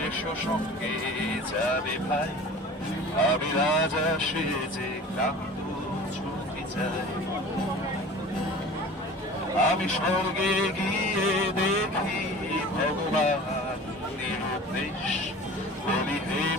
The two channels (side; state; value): both; normal; correlation 0.40